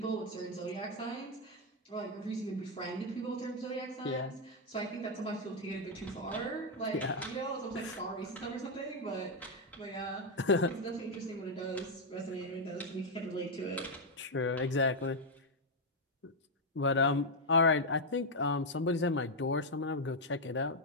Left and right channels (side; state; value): both; normal; correlation 0.01